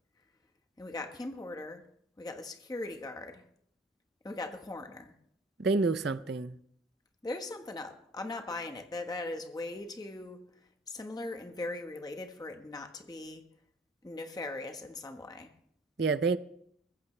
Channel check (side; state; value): both; normal; correlation 0.49